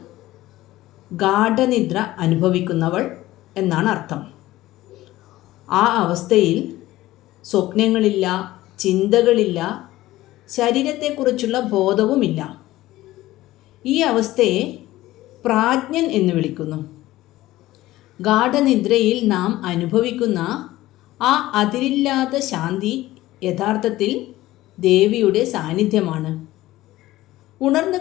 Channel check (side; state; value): right; quieter; 16.5 dB